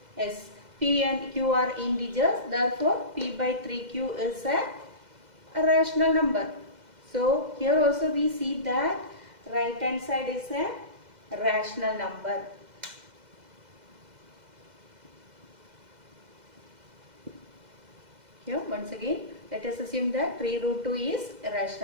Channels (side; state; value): left; late; 2.0 ms